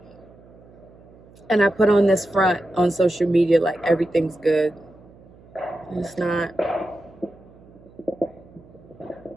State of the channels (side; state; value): right; noise; hum, 24 dB below the sound